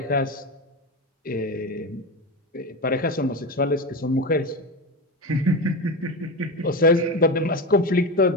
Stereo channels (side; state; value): both; normal; correlation 0.20